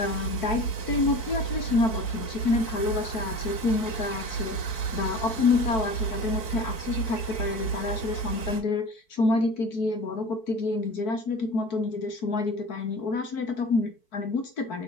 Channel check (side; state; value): right; late; 4.6 ms